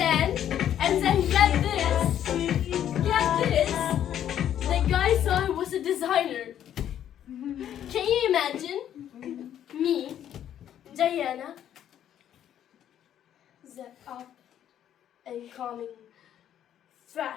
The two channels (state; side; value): quieter; right; 10.5 dB